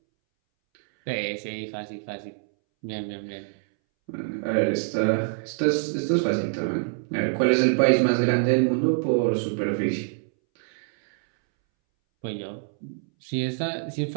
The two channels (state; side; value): silent; left; 61 dB below the other